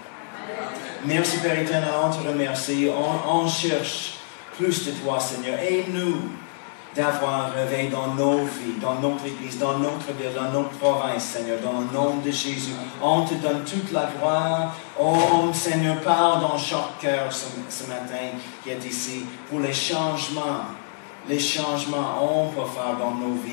Merci, Père éternel, on te remercie. On cherche plus de toi, Seigneur. Aide-nous d'avoir un réveil dans nos vies, dans notre Église, dans notre ville, dans notre province, Seigneur, dans le nom de Jésus. On te donne toute la gloire. Oh, Seigneur, parle dans chaque cœur ce matin qui est ici pour les changements. Les changements on peut faire dans nos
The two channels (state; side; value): silent; right; digital silence